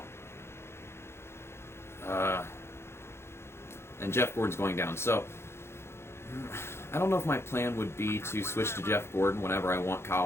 And Jeff Gordon's going down. So I don't know if my plan would be to switch to Jeff Gordon whenever I want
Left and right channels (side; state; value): right; late; 0.12 ms